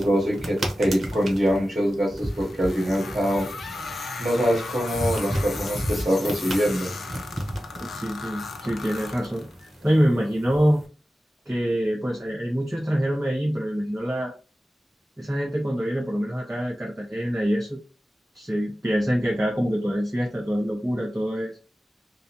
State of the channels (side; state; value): both; normal; correlation 0.94